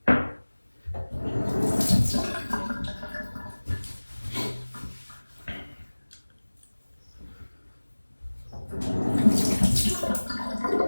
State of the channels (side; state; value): both; inverted; correlation -1.00